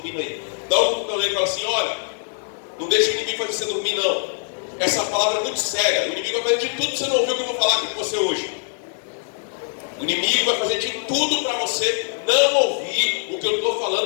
aí. Dá um cutucão nele e fala assim: olha, não deixa o inimigo fazer você dormir, não. Essa palavra é muito séria. O inimigo vai fazer de tudo que você não ouviu que eu vou falar aqui com você hoje. O inimigo vai fazer de tudo para você não ouvir o que eu estou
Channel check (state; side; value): silent; right; digital silence